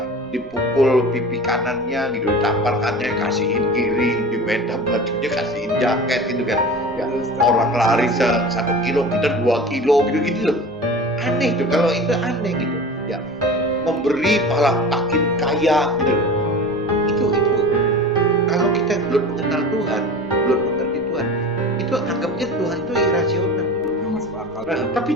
dipukul pipi kanannya gitu, tampalkannya kasihin kiri, di meja bajunya kasihin jaket gitu kan. Ya, orang lari 1 kilo kita 2 kilo gitu loh. Aneh tuh, kalau itu aneh gitu ya, memberi malah makin kaya gitu loh. Itu kalau kita belum mengenal Tuhan, belum mengerti Tuhan, itu anggapnya Tuhan itu irasional. Nah, tapi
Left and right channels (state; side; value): normal; both; correlation 0.35